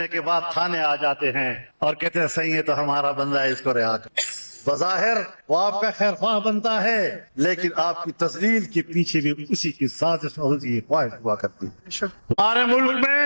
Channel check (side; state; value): both; inverted; correlation -1.00